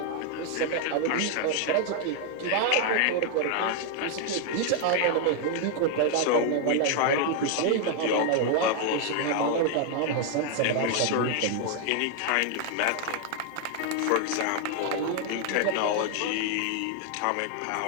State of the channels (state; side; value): different; both; correlation 0.00